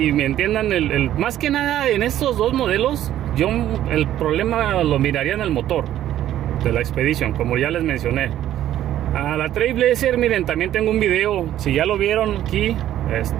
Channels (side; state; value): left; quieter; 12.3 dB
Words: me entiendan más que nada en estos dos modelos. Yo el problema lo miraría en el motor de la Expedition, como ya les mencioné. A la Trailblazer, miren, también tengo un video. Si ya lo vieron aquí,